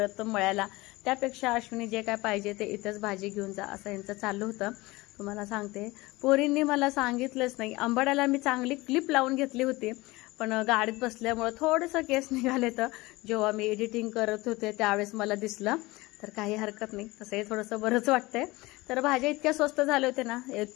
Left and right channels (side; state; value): right; quieter; 21.3 dB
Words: मळ्याला. त्यापेक्षा अश्विनी जे काय पाहिजे ते इथंच भाजी घेऊन जा असं यांचं चाललं होतं. तुम्हाला सांगते, पोरींनी मला सांगितलंच नाही. आंबाड्याला मी चांगली क्लिप लावून घेतली होती, पण गाडीत बसल्यामुळे थोडंसं केस निघाले. तर जेव्हा मी एडिटिंग करत होते त्यावेळेस मला दिसलं. तर काही हरकत नाही, तसंही थोडंसं बरंच वाटतंय. तर भाज्या इतक्या स्वस्त झाले होते ना,